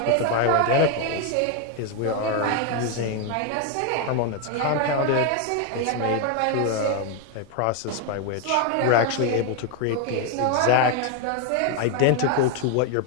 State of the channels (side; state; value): both; different; correlation 0.01